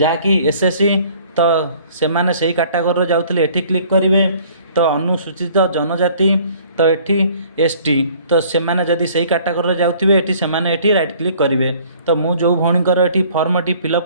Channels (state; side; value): inverted; both; correlation -0.55